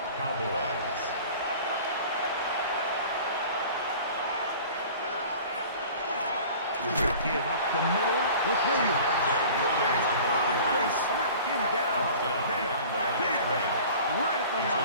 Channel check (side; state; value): both; inverted; correlation -0.43